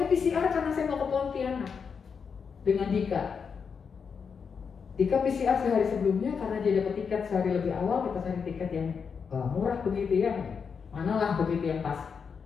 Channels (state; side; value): quieter; right; 6.1 dB